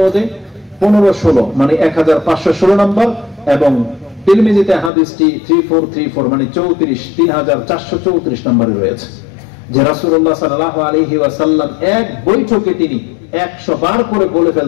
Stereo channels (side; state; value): right; drops out; at 4.9 s